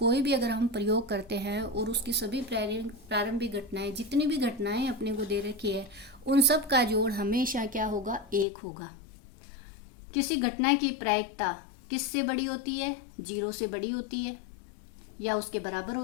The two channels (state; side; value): drops out; right; at 8.5 s